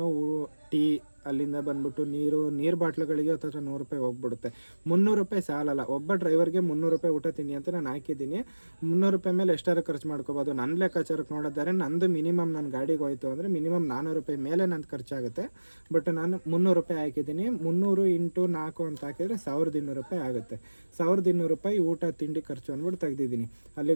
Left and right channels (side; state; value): both; inverted; correlation -1.00